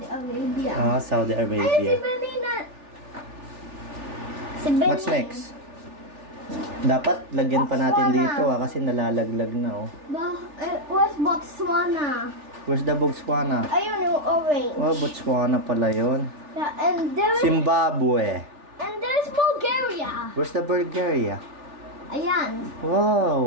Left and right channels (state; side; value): late; left; 3.4 ms